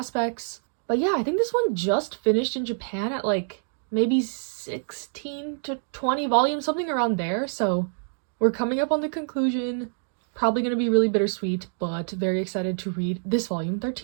But yeah, I think this one just finished in Japan at, maybe 16 to 20 volumes, something around there, so we're coming up on the conclusion. Probably gonna be really bittersweet, but very excited to read this volume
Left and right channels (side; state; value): left; silent; digital silence